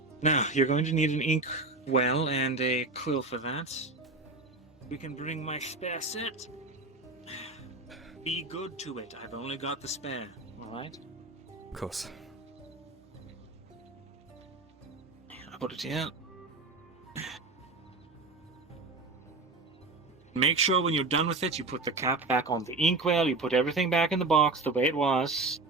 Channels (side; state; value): left; quieter; 3.3 dB